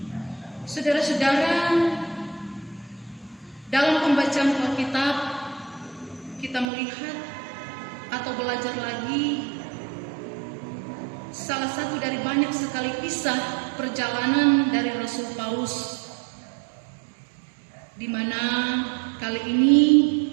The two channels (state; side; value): drops out; left; at 6.7 s